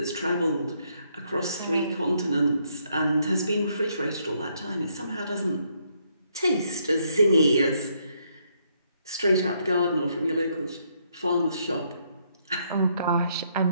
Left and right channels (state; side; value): inverted; both; correlation -0.73